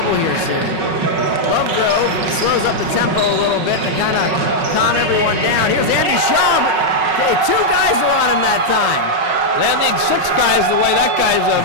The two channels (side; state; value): left; late; 5.4 ms